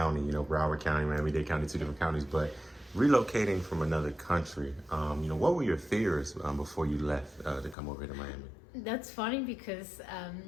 Broward County, Miami-Dade County, two different counties, but relocating from another country, what were your fears before you left to come over here to Miami? That's funny because,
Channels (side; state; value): right; drops out; at 7.8 s